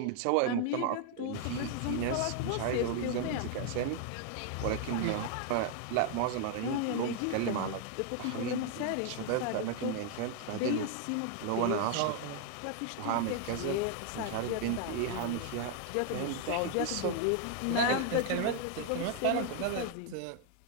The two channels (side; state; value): both; different; correlation 0.00